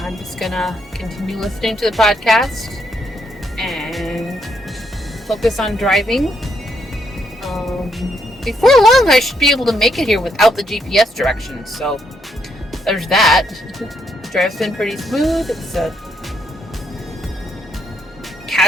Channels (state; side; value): normal; both; correlation 0.76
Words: just gonna continue listening to the podcast and focus on driving. Before long, I should be able to make it here without the GPS directions, so there's that. Drive's been pretty smooth. It's a